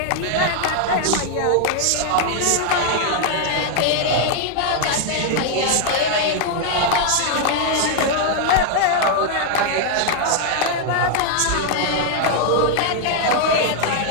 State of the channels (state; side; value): different; both; correlation 0.00